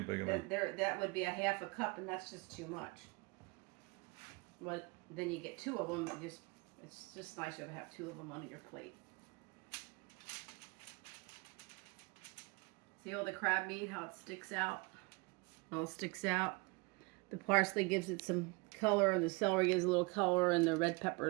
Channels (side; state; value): left; quieter; 28.3 dB